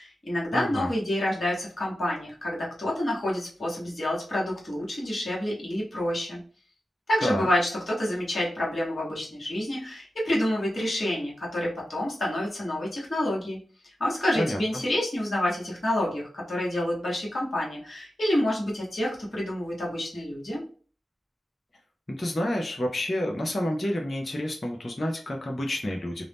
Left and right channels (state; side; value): normal; both; correlation 0.92